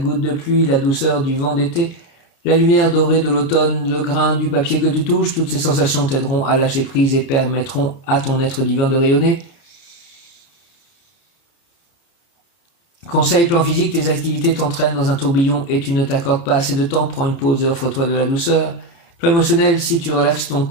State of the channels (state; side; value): late; right; 30 ms